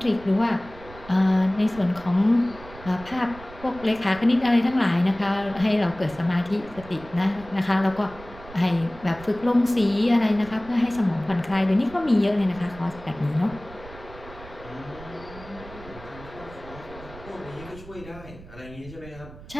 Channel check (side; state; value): right; noise; rumble, 18 dB below the sound